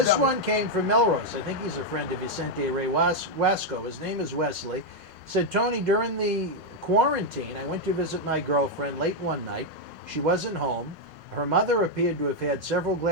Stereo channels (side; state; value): left; late; 6.1 ms